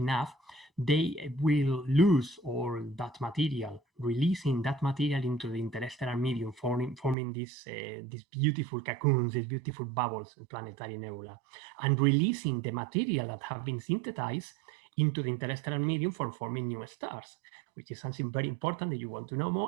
they will lose all that material, releasing that material into the interstellar medium, forming these beautiful cocoons, these beautiful bubbles, planetary nebula, and releasing the material that have been synthesized into the interstellar medium for forming new stars, which is something very important that you want to know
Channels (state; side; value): drops out; left; at 7.2 s